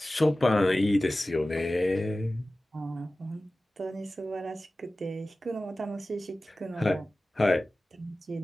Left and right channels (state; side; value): normal; both; correlation 0.96